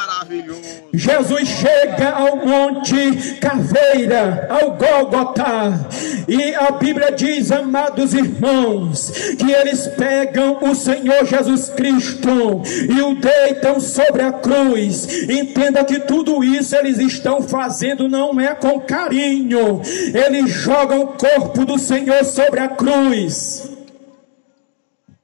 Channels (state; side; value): silent; right; digital silence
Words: Jesus chega ao monte Caveira, ao Gólgota, e a Bíblia diz, amados irmãos, que eles pegam o Senhor Jesus Cristo e o deitam sobre a cruz. Entenda que tudo isso eles estão fazendo não é com carinho, eles jogam o corpo do Senhor sobre a cruz.